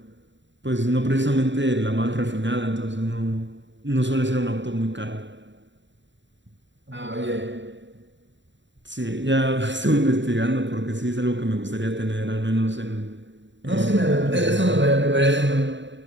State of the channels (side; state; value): left; late; 0.54 ms